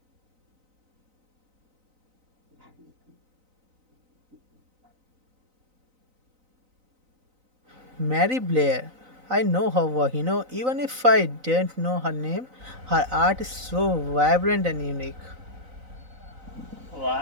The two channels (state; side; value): late; left; 3.9 ms